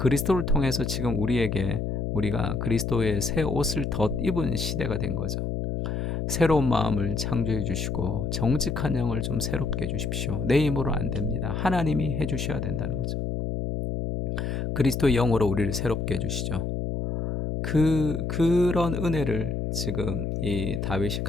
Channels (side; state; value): left; noise; hum, 2 dB below the sound